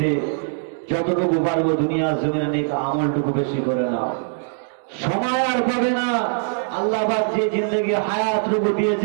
যতটুকু পারবো দুনিয়ার জমিনে নেই আমলটুকু বেশি করে নাও। সময় আর পাবে না। আল্লাহ পাক যে জিন্দগি হায়াতটুকু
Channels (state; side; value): silent; left; digital silence